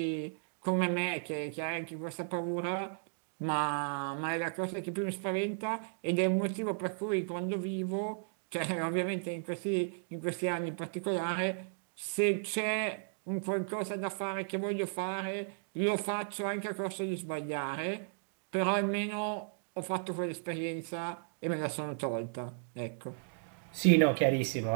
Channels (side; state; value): left; silent; digital silence